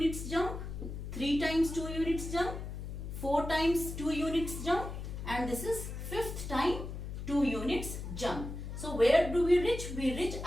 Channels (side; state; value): left; noise; hum, 7 dB below the sound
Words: jump, 3 times 2 units jump, 4 times 2 units jump and this is 5th time 2 units jump. So where do we reach? We reach